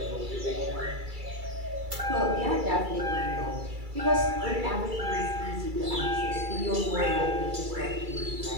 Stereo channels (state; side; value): late; left; 2.3 ms